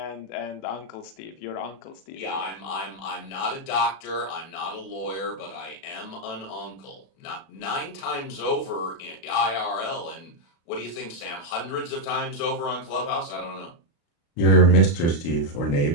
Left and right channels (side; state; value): right; late; 36 ms